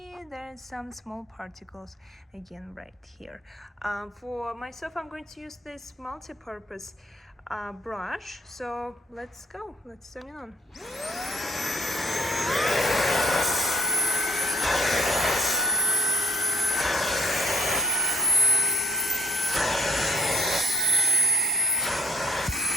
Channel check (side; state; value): both; normal; correlation 0.61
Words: there are some small particles again right here. For my sofa, I'm going to use this multi-purpose brush. So let's go, let's turn it on.